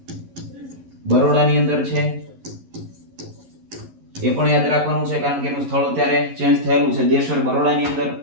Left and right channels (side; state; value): left; late; 11 ms